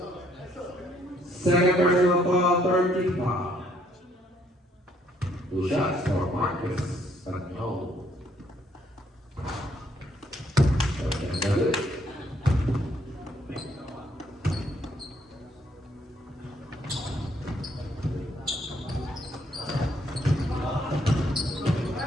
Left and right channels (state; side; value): normal; both; correlation 0.68